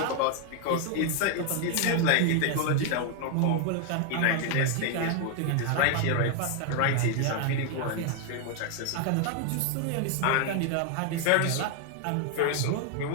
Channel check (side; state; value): both; different; correlation 0.01